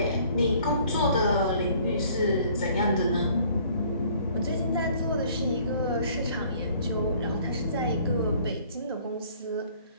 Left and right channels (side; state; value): both; inverted; correlation -0.57